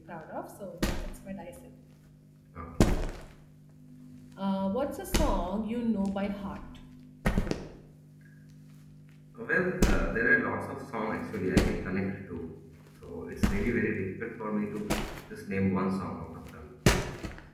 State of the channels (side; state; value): both; identical; correlation 1.00